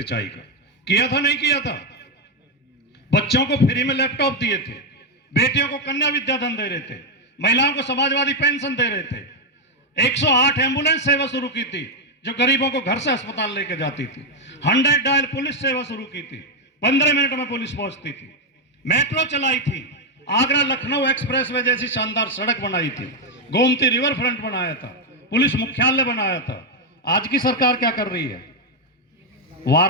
का किया था, नहीं किया था? बच्चों को फ्री में लैपटॉप दिए थे, बेटियों को कन्या विद्याधन दे रहे थे, महिलाओं को समाजवादी पेंशन दे रहे थे, 108 एम्बुलेंस सेवा शुरू की थी जो गरीबों को घर से अस्पताल लेकर जाती थी, 100 डायल पुलिस सेवा शुरू की थी, 15 मिनट में पुलिस पहुंचती थी, मेट्रो चलाई थी, आगरा लखनऊ एक्सप्रेसवे जैसी शानदार सड़क बनाई थी, गोमती रिवर फ्रंट बनाया था, पुलिस मुख्यालय बनाया था। आज की सरकार क्या कर रही है?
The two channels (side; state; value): both; normal; correlation 0.02